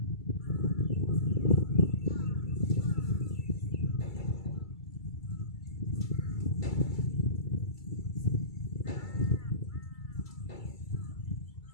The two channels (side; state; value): right; late; 2.3 ms